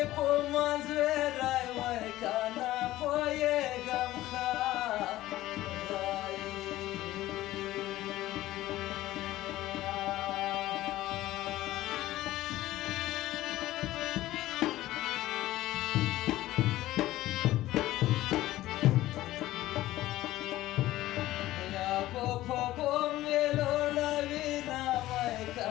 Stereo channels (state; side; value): quieter; right; 15.7 dB